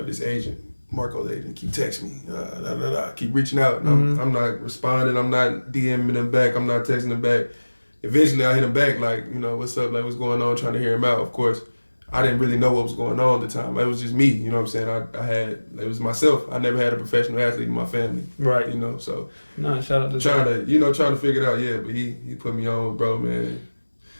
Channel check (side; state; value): both; inverted; correlation -1.00